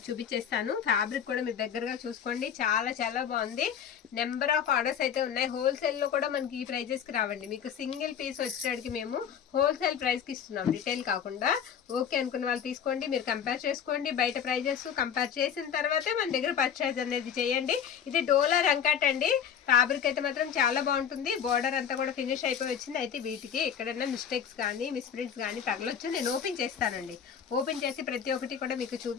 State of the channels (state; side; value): quieter; right; 8.2 dB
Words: చూపించేస్తాను. ఫ్యాబ్రిక్ కూడా మీరు దగ్గరగా చూసుకోండి. చాలా చాలా బాగుంది. నెంబర్ ఆఫ్ ఆర్డర్స్ అయితే ఉన్నాయి. హోల్సేల్ లో కూడా మనకి ఈ ప్రైజెస్ కి రావండి. మీకు సింగిల్ పీస్ వచ్చేటికి మేము హోల్సేల్ ప్రైస్ కి ఇస్తున్నాం, రిటైల్ కాకుండా. ఓకే అనుకున్న వాళ్ళు తీసుకోండి, మీరు కంపేర్ చేసుకోండి. బయట ప్రైజెస్ కంపేర్ చేసిన తర్వాతే మన దగ్గర పర్చేజ్ అనేది చేయండి. ఇది డోలా రంకాట్ అండి. ఫ్యాబ్రిక్ అయితే మాత్రం చాలా బాగుంటుంది. బోర్డర్ అంతా కూడా ఫినిష్ అయిపోయి వచ్చింది. అయితే వీటికి ఎక్కడైనా మిస్టేక్స్ కానీ మిస్ప్రింట్స్ కానీ తగలొచ్చు. నేను ఓపెన్ చేస్తానండి. ఓపెన్ చేసి ప్రతి ఒక్కటి కూడా మీకు